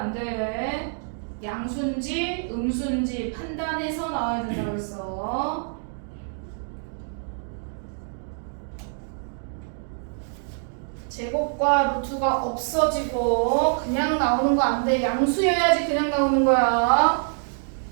돼. 양수인지 음수인지 판단해서 나와야 된다고 했어. 제곱과 루트가 없어지고 그냥 나오는 거 안 돼. 양수여야지 그냥 나오는 거야.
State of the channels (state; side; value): silent; left; 61 dB below the other